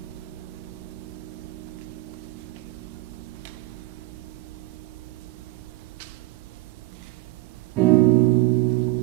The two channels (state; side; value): quieter; left; 18.5 dB